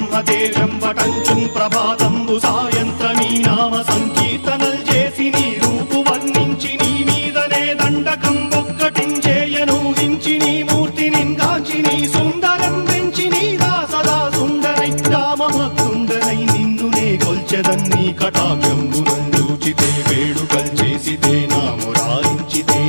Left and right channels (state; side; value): inverted; both; correlation -1.00